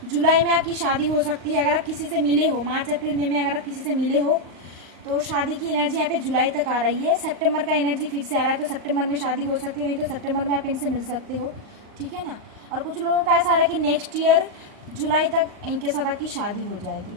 जुलाई में आपकी शादी हो सकती है। अगर आप किसी से मिले हो मार्च अप्रैल मई में, अगर आप किसी से मिले हो तो शादी की एनर्जी यहाँ पे जुलाई तक आ रही है। सितंबर का एनर्जी फिर से आ रहा है, तो सितंबर में शादी हो सकती है, नहीं तो सितंबर में आप इनसे मिल सकते हो। ठीक है ना। और कुछ लोगों का ऐसा आ रहा है कि नेक्स्ट ईयर जुलाई तक इनके साथ आपकी शादी हो जाएगी।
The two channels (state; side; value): late; left; 38 ms